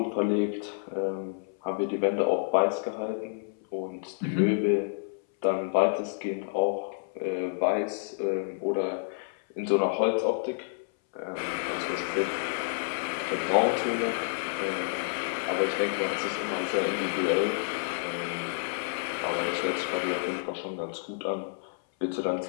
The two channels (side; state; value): right; silent; 58 dB below the other